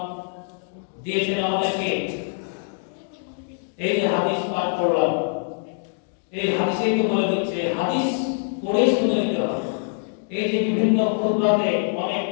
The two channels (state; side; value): silent; right; 61 dB below the other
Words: দিয়েছেন আমাদেরকে। এই যে হাদিস পাঠ করলাম, এই হাদিসেই তো বলে দিচ্ছে, হাদিস পড়ে শুনে নিতে হবে। এই যে বিভিন্ন খুতবাতে অনেক